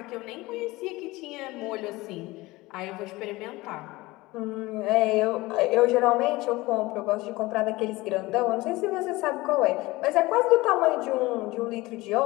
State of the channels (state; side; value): quieter; right; 20.5 dB